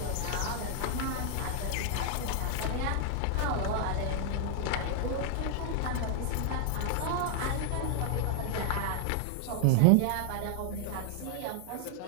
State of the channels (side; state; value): both; different; correlation 0.00